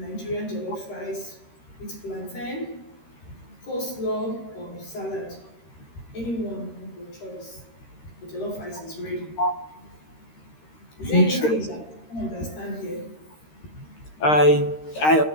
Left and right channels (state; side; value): late; right; 13 ms